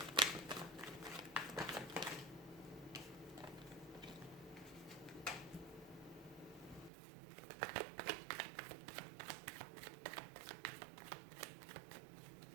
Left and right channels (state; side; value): drops out; left; at 6.9 s